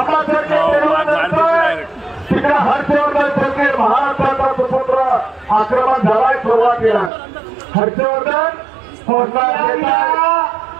तिकडे हर्षवर्धन सरकार महाराष्ट्राचा सुपुत्र आक्रमण झालाय सुरुवातीला हर्षवर्धन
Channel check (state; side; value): drops out; left; at 7.1 s